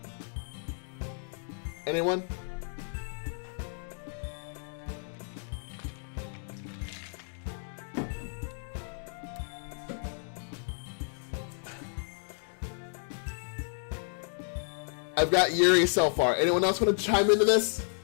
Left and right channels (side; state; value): right; silent; 56 dB below the other